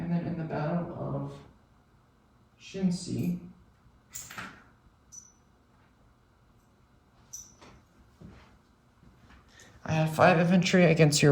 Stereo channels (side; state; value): both; identical; correlation 1.00